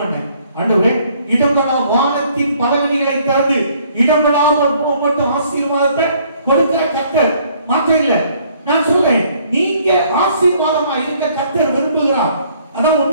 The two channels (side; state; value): both; inverted; correlation -0.62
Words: பண்ணேன். ஆண்டவரே, இடங்கடா வானத்தின் பதவிகளை தந்து இடங்கடாமல் மட்டும் ஆசீர்வாதத்தை கொடுக்கிற கர்த்தர் மாற்ற இல்லை. நான் சொல்றேன், நீங்க ஆசீர்வாதமா இருக்க கர்த்தர் விரும்புகிறார். அதான்